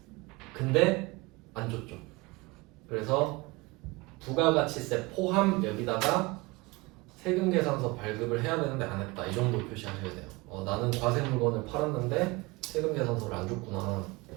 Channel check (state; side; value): quieter; left; 23.6 dB